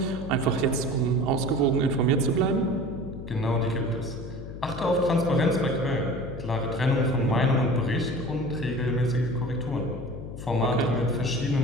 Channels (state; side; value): noise; left; hum, 11 dB below the sound